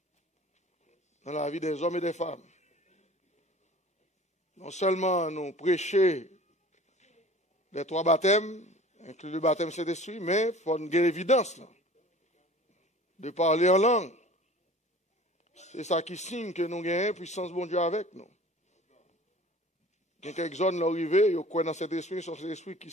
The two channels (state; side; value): normal; both; correlation 0.44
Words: Dans la vie des hommes et des femmes. Non seulement nous prêcher les 3 baptêmes, inclus le baptême Saint-Esprit, mais il faut une évidence là, de parler en langue. C'est ça qui signe que nous avons une puissance bon Dieu avec nous. Il y a quelques zones là arrivées, ils croient dans cet esprit, sur cet esprit qui est